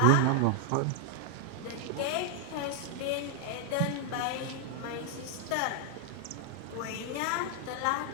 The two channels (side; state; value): both; different; correlation 0.00